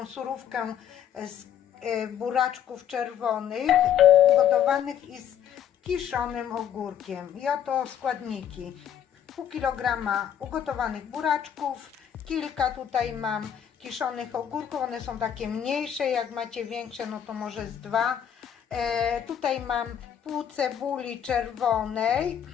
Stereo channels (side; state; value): right; quieter; 9.3 dB